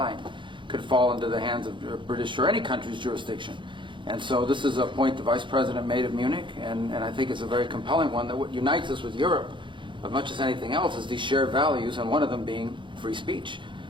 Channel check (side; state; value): left; late; 0.23 ms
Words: could fall into the hands of British or any country's jurisdiction. And so this is a point the Vice President made of Munich, and I think it's a very compelling one, that what unites us with Europe, as much as anything else, is these shared values, and one of them being free speech.